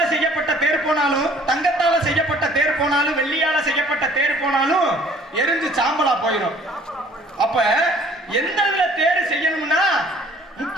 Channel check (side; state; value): both; normal; correlation 0.54